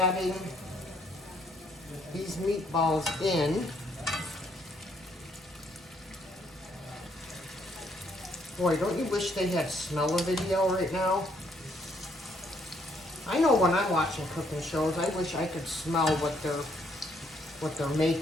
these meatballs in. Boy, don't you wish they had smell-o-video right now? I know when I'm watching cooking shows, I wish I could smell what they're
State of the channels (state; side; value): normal; both; correlation 0.69